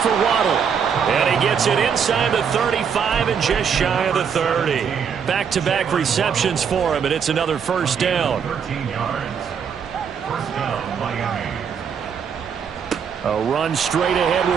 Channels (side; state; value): left; quieter; 7.1 dB